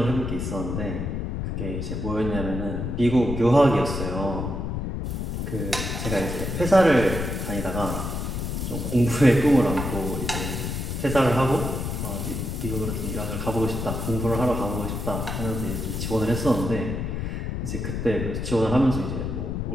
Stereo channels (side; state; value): left; noise; rumble, 3 dB below the sound